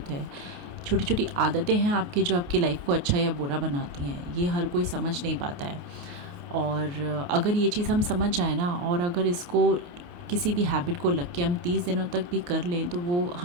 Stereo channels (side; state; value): left; late; 28 ms